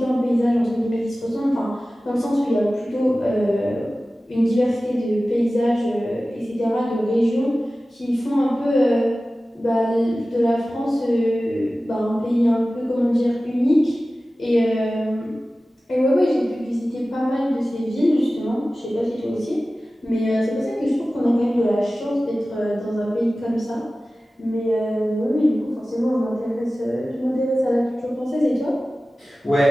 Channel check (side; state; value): both; normal; correlation 0.96